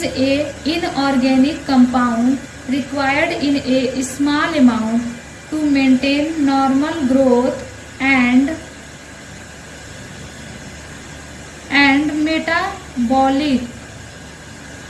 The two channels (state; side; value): identical; both; correlation 1.00